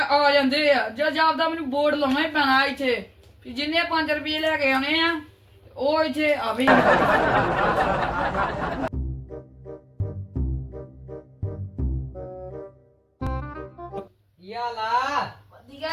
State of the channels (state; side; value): identical; both; correlation 1.00